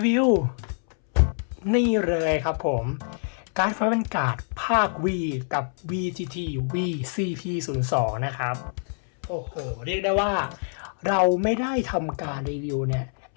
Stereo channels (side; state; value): right; silent; 61 dB below the other